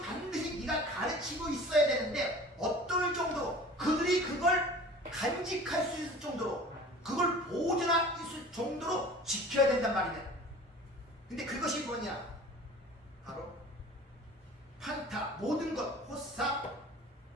반드시 네가 가르치고 있어야 되는데 어떨 정도로, 그들이 그걸 간직할 수 있을 정도로, 그걸 보존할 수 있을 정도로 지켜야 된단 말이야. 근데 그것이 뭐냐? 바로 판타, 모든 것, 호사,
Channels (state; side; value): normal; both; correlation 0.42